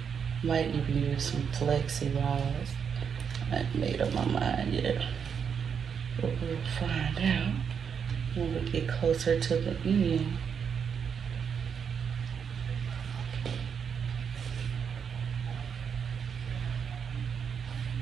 Might even use some Flexi rods. I haven't made up my mind yet. But we'll find out when we get closer to the end.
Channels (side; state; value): left; quieter; 7.0 dB